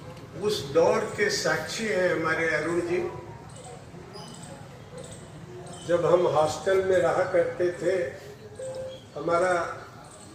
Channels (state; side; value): identical; both; correlation 1.00